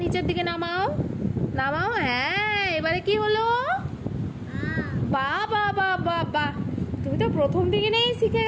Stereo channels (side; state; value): both; identical; correlation 1.00